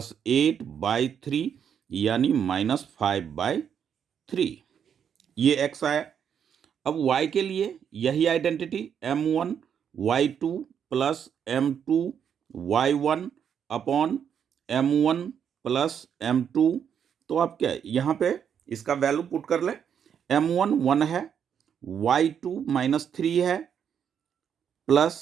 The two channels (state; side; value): quieter; left; 8.1 dB